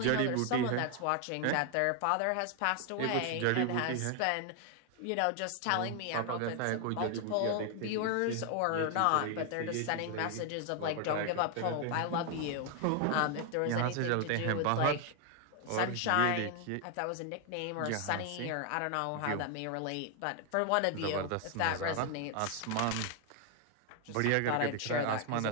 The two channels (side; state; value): both; different; correlation 0.00